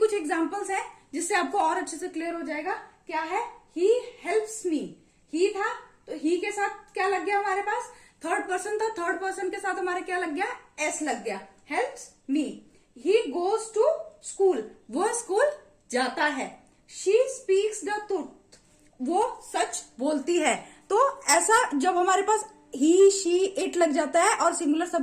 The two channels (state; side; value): identical; both; correlation 1.00